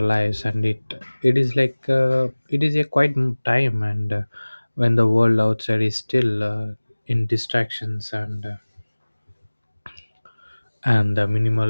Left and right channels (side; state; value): both; inverted; correlation -1.00